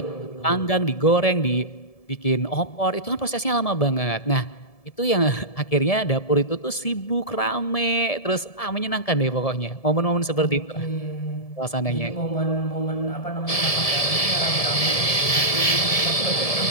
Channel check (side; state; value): right; late; 1.7 ms